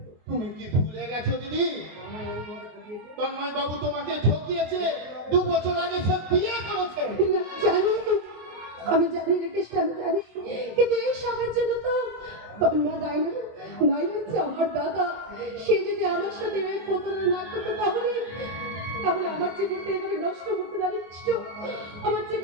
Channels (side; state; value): left; late; 24 ms